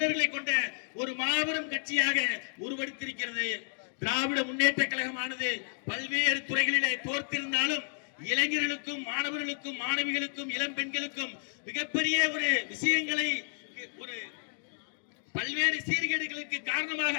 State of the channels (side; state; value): right; silent; digital silence